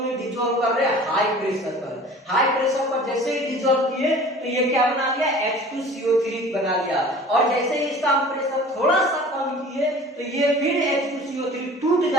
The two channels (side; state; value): both; normal; correlation 0.44